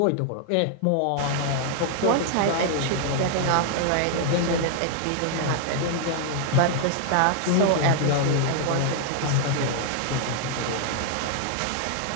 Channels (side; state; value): both; different; correlation 0.00